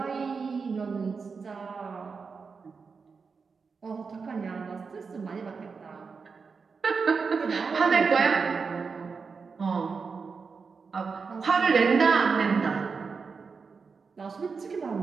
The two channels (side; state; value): left; quieter; 5.1 dB